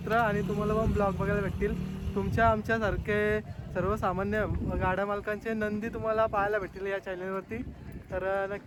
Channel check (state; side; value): identical; both; correlation 1.00